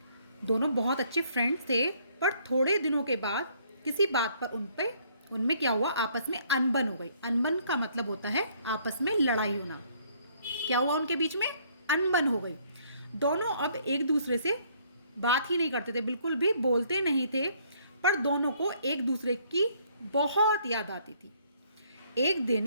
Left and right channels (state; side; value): inverted; both; correlation -0.64